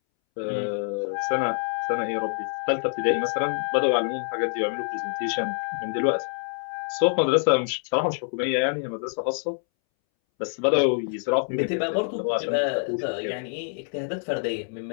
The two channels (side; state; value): right; silent; 61 dB below the other